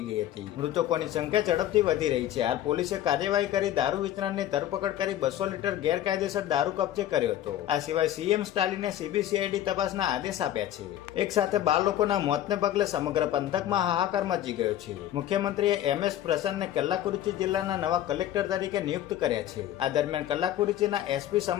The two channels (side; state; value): right; quieter; 12.3 dB